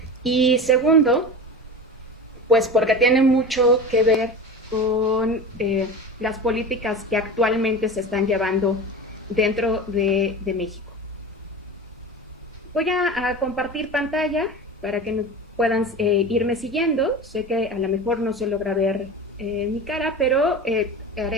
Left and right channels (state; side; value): normal; both; correlation 0.29